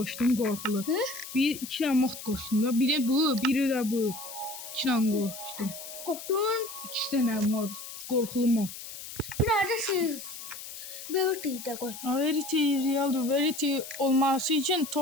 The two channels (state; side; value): noise; left; hiss, 11 dB below the sound